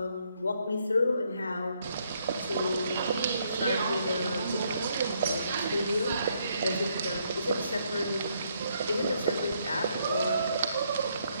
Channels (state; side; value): inverted; both; correlation -0.73